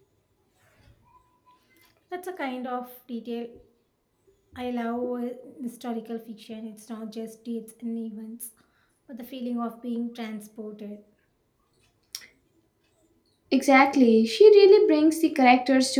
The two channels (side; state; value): both; identical; correlation 1.00